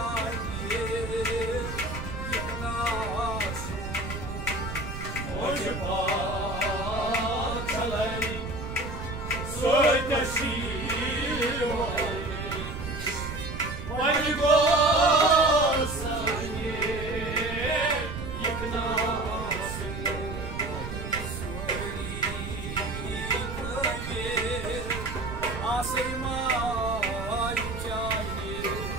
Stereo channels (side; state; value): right; noise; rumble, 7 dB below the sound